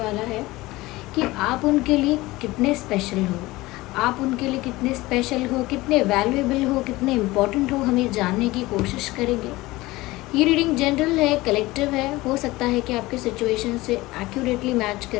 है कि आप उनके लिए कितने स्पेशल हो, आप उनके लिए कितने स्पेशल हो, कितने वैल्यूएबल हो, कितने इम्पोर्टेंट हो, हमें जानने की कोशिश करेंगे। ये रीडिंग जनरल है, कलेक्टिव है, हो सकता है कि आपके सिचुएशन से एक्यूरेटली मैच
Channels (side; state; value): right; quieter; 19.7 dB